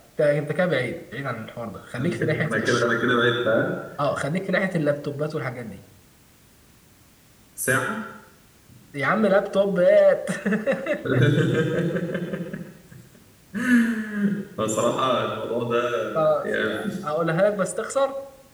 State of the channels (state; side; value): identical; both; correlation 1.00